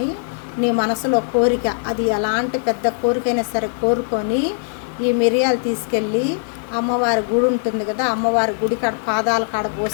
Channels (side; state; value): right; silent; digital silence